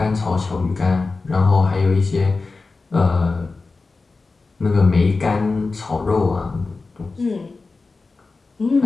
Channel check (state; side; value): quieter; right; 3.9 dB